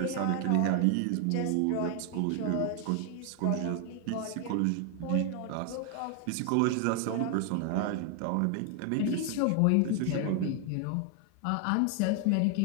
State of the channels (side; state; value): both; different; correlation 0.00